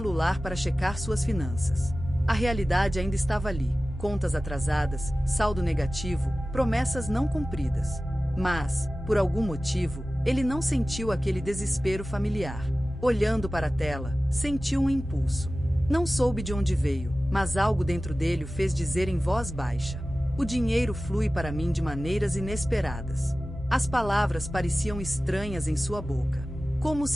para checar suas finanças. A realidade ainda estava ali. Contas atrasadas, saldo negativo, promessas não cumpridas. Mas, por algum motivo, ele não sentiu aquele desespero familiar. Olhando para a tela, sentiu um impulso. Não soube de onde veio, mas algo dentro dele o fez dizer em voz baixa: "O dinheiro flui para mim de maneiras inesperadas." As palavras pareciam estranhas em sua boca, como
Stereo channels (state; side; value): normal; both; correlation 0.96